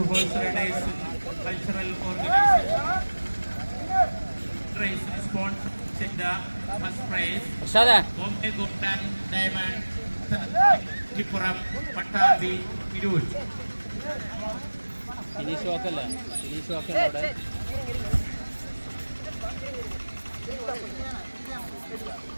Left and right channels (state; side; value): inverted; both; correlation -1.00